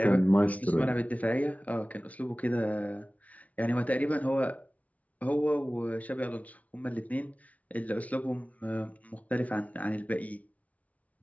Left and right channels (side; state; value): right; late; 0.069 ms